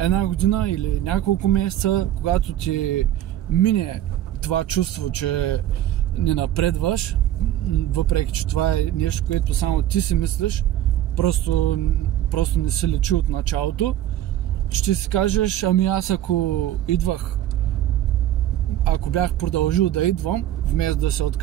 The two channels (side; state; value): left; quieter; 12.4 dB